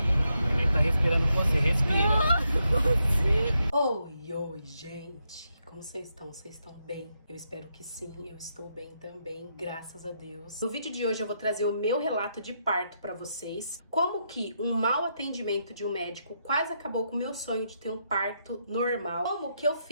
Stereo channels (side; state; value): both; inverted; correlation -0.81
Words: O neném tá respirando com você, respira. Oi, oi, gente! Como vocês estão? Vocês estão bem? Eu espero que sim, eu estou bem também, graças a Deus. No vídeo de hoje eu vou trazer o meu relato de parto pra vocês. Como que um mau atendimento de um médico quase acabou com o meu sonho de ter um parto normal. Como que eu